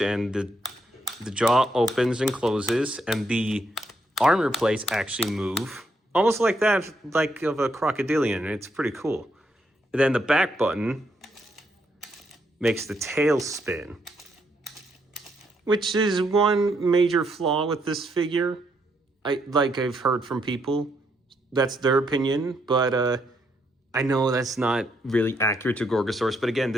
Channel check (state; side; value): normal; both; correlation 0.76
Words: and the jaw opens and closes, and the armor plates actually move, almost like that, like of a crocodilian. It's pretty cool. And then the back button makes the tail spin, which is one major flaw with this figure. I've heard from people, that's their opinion, but I know that's not really accurate to Gorgosaurus. But again,